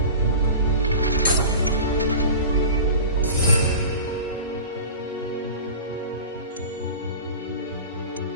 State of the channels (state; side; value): inverted; both; correlation -0.35